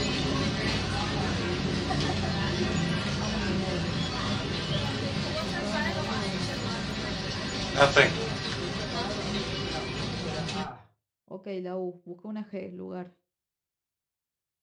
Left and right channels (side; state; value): both; identical; correlation 1.00